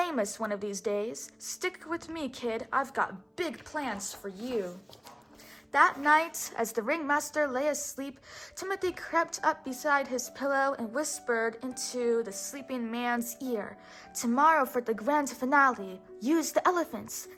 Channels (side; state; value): both; identical; correlation 1.00